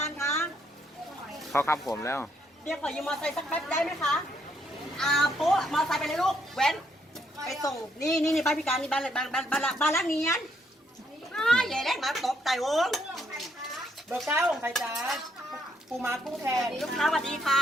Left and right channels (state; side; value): normal; both; correlation 0.73